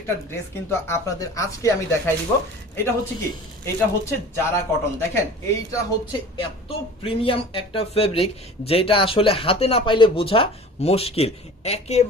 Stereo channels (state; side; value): normal; both; correlation 0.41